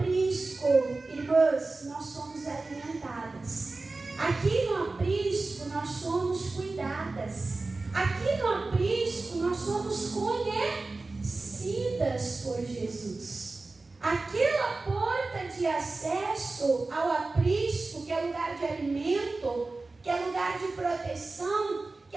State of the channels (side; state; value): left; quieter; 3.5 dB